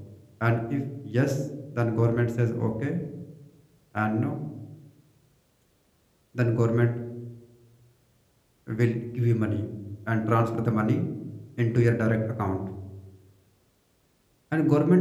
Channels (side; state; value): both; identical; correlation 1.00